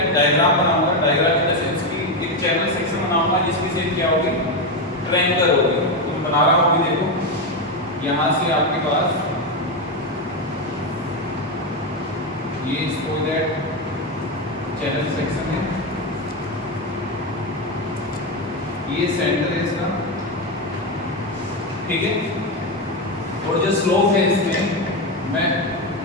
डायग्राम बनाऊंगा। डायग्राम इन द सेंस की एक चैनल सेक्शन बनाऊंगा जिसकी शेप क्या होगी, ट्रायंगुलर होगी। तो मैं बना रहा हूँ, अभी देखो यहाँ से आपके पास ये स्पोइलर चैनल सेक्शन है, ये सेंटर है इसका। ठीक है, और जो स्लोप है इसमें मैं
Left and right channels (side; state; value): both; normal; correlation 0.10